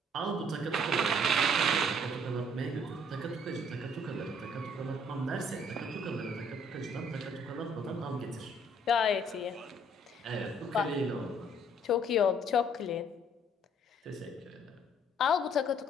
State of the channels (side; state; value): both; normal; correlation 0.61